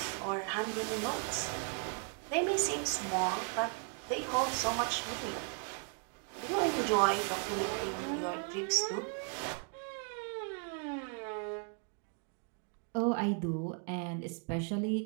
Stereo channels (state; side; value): quieter; left; 39.4 dB